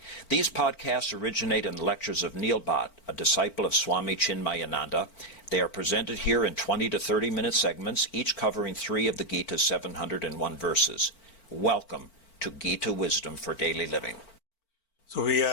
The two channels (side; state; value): right; late; 4.4 ms